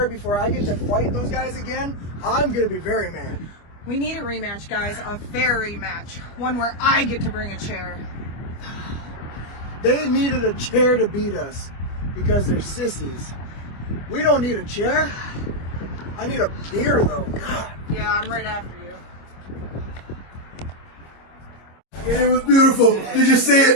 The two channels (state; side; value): late; right; 25 ms